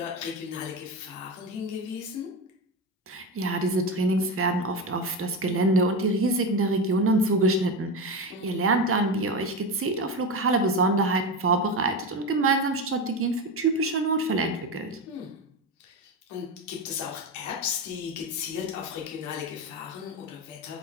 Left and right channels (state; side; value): normal; both; correlation 0.18